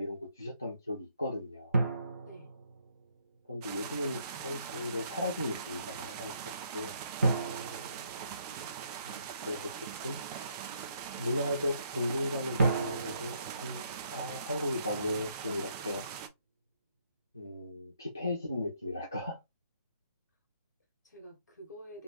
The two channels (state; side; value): inverted; both; correlation -0.70